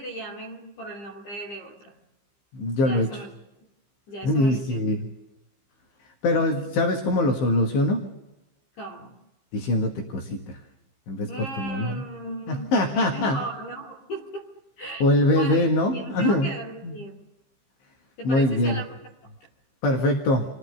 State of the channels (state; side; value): late; right; 15 ms